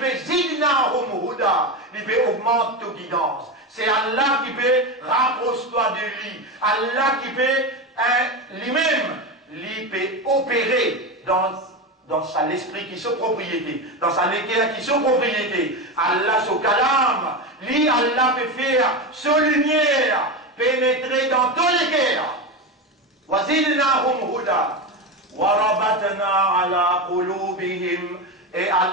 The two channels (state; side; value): normal; both; correlation 0.18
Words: zidna huda, il peut augmenter ta guidance. C'est Allah qui peut rapprocher-toi de lui. Allah qui peut lui-même, lui peut opérer dans sa l'esprit qui sont propriété, dans sa l'équerre qui sont propriété. Allah son kalam, lui Allah peut faire sa lumière pénétrer dans ton équerre. Wazidnahum huda warabatna ala qulubihim. Et